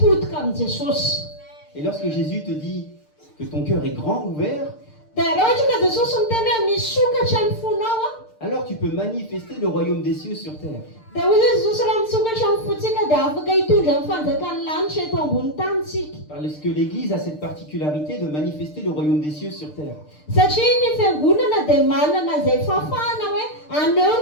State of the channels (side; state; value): right; late; 6.6 ms